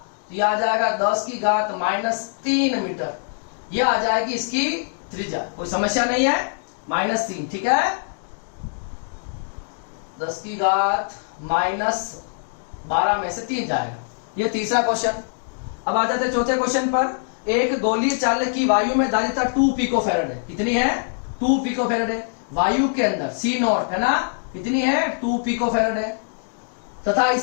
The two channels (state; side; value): silent; right; digital silence